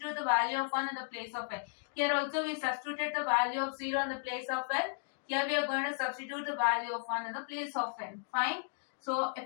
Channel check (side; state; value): right; silent; digital silence